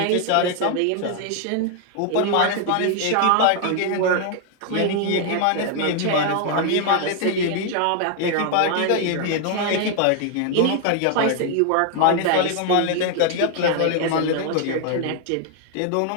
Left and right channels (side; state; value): both; different; correlation 0.00